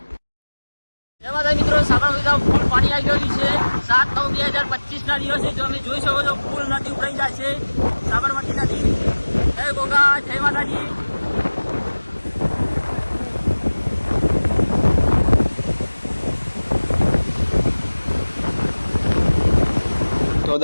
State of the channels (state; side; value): inverted; both; correlation -1.00